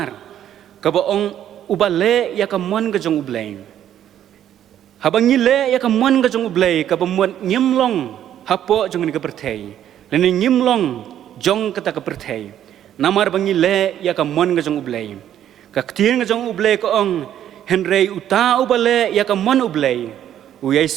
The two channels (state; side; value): quieter; left; 10.8 dB